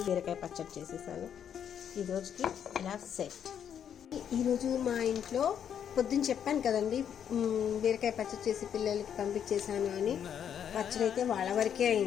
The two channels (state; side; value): quieter; right; 8.7 dB